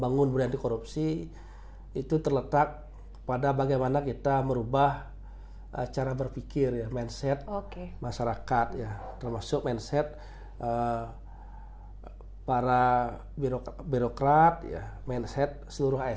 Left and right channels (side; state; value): both; identical; correlation 1.00